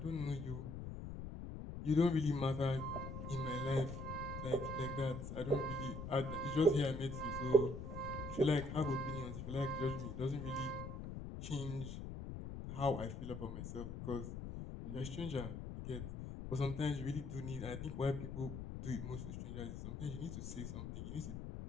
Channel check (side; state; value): left; noise; rumble, 7 dB below the sound